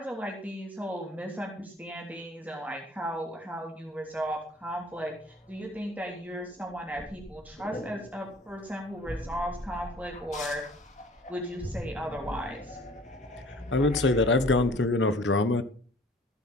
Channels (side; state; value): both; normal; correlation 0.50